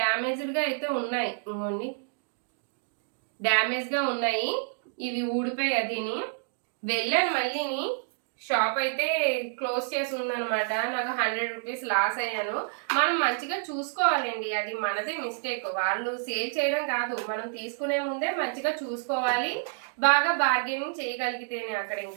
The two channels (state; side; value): silent; left; digital silence